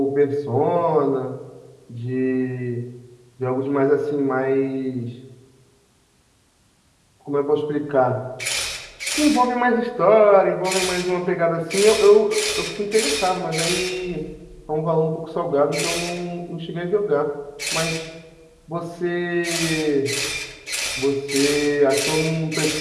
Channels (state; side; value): identical; both; correlation 1.00